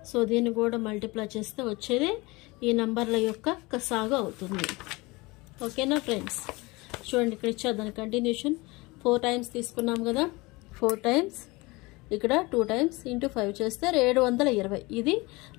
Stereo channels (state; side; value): quieter; right; 23.5 dB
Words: సో దీన్ని కూడా మల్టిప్లై చేస్తే వచ్చేది ఈ నంబర్ల యొక్క కసాగు అవుతుంది. ఓకేనా ఫ్రెండ్స్? చూడండి ఇక్కడ ఇచ్చారు దాని కంటిన్యూషన్ 4 టైమ్స్ తీసుకున్నాం కదా 4 టైమ్స్ ఇక్కడ 2 టైమ్స్ ఇంటూ 5 చేస్తే 720 ఇది